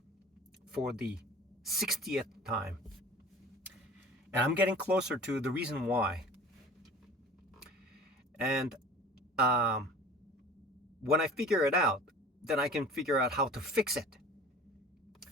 for the 60th time. And I'm getting closer to the reason why. And when I figure it out, then I can figure out how to fix it.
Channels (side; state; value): both; normal; correlation 0.43